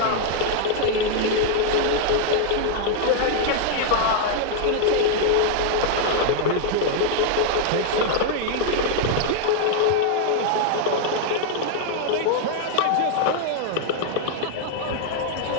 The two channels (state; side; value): different; both; correlation 0.00